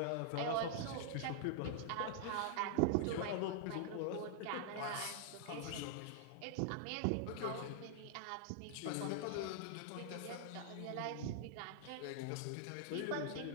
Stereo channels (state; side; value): different; both; correlation -0.01